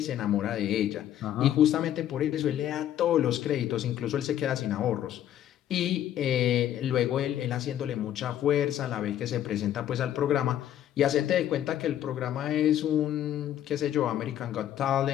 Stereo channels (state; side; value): quieter; right; 11.3 dB